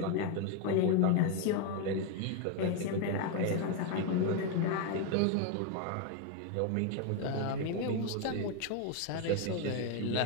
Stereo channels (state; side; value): different; both; correlation 0.01